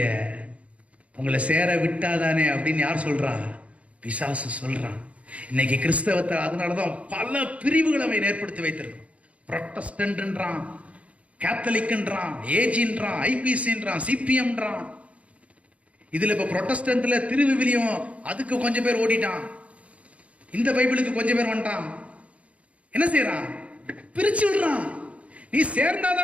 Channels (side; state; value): left; late; 0.064 ms